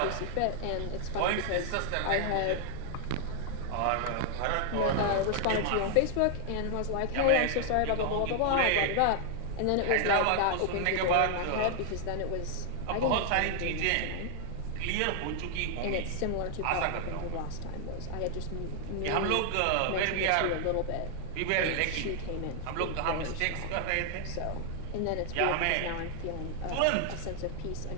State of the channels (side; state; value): both; different; correlation 0.00